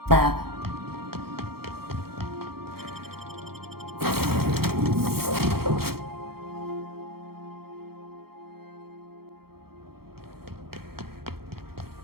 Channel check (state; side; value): late; left; 0.94 ms